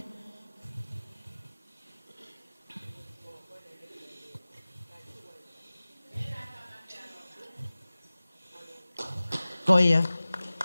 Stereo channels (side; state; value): both; inverted; correlation -0.98